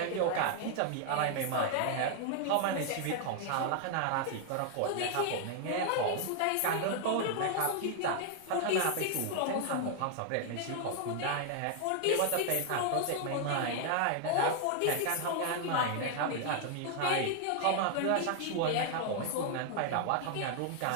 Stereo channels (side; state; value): both; different; correlation 0.00